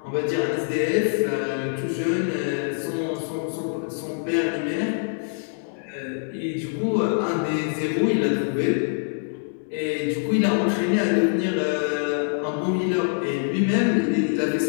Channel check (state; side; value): silent; right; digital silence